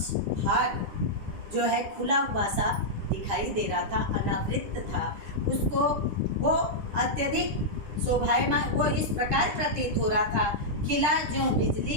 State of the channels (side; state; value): left; late; 9.9 ms